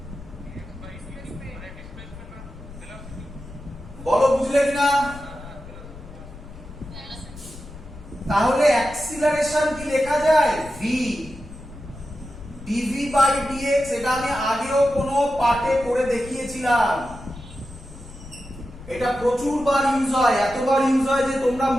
বলো বুঝলে কিনা? তাহলে অ্যাক্সিলারেশন কি লেখা যায়? v dv বাই dx, এটা আমি আগেও কোনো পাঠে করে দেখিয়েছিলাম, এটা প্রচুর বার ইউজ হয়, এতবার ইউজ হয় যে তোমরা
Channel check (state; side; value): noise; left; rumble, 15 dB below the sound